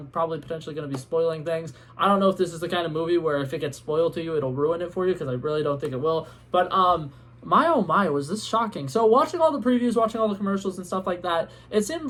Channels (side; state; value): both; identical; correlation 1.00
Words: probably potentially going to be spoiling things. I don't know if this is the kind of movie where if it gets spoiled to you, it'll ruin it for you, because I really don't think it will. But my oh my, was this shocking. So watching all the previews, watching all the commercials and stuff like that, it seemed